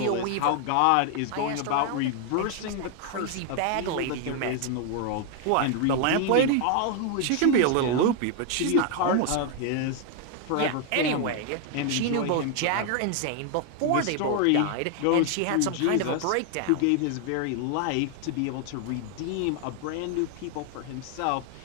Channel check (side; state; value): both; different; correlation 0.00